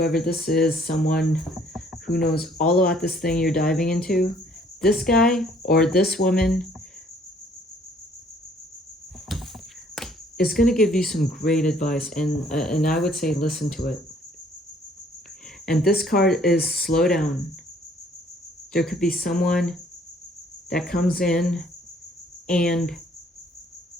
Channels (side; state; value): both; normal; correlation 0.60